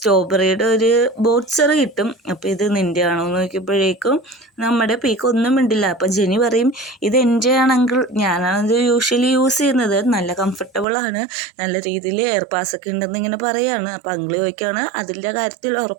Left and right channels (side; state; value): left; drops out; at 10.9 s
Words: ഒരു ബോട്ട്സർ കിട്ടും. അപ്പോൾ ഇത് നിൻ്റെ ആണോ എന്ന് നോക്കിയപ്പോഴേക്കും നമ്മുടെ പീക്ക് ഒന്നും മിണ്ടില്ല. അപ്പോൾ ജെനി പറയും, ഇത് എൻ്റെ ആണെങ്കിൽ ഞാനാണിത് യൂഷ്വലി യൂസ് ചെയ്യുന്നത്, നല്ല കംഫർട്ടബിളാണ്, നല്ല രീതിയിൽ എയർ പാസ്സൊക്കെ ഉണ്ടെന്ന് ഇങ്ങനെ പറയുകയാണ്. അപ്പോൾ അങ്കിള് ചോദിക്കുകയാണ്, അതിൻ്റെ കാര്യത്തിൽ